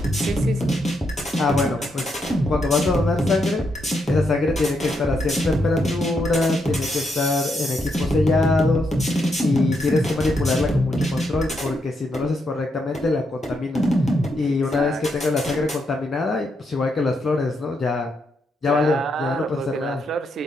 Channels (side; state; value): both; normal; correlation 0.80